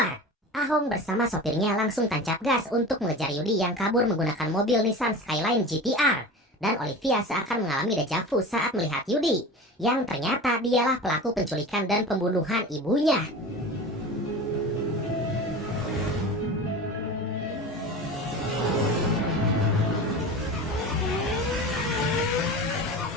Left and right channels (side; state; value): both; normal; correlation 0.33